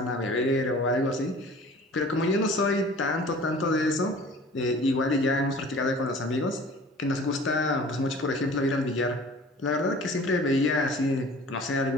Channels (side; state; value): both; normal; correlation 0.46